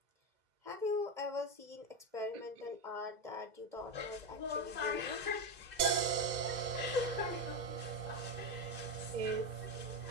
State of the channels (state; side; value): late; left; 2.0 ms